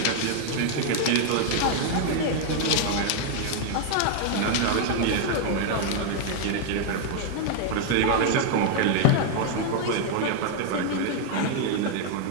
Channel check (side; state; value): both; different; correlation 0.00